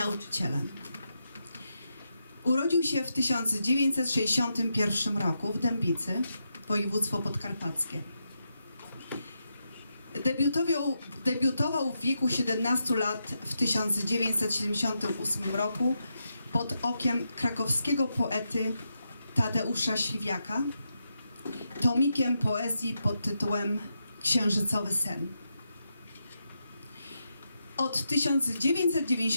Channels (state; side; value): inverted; both; correlation -0.85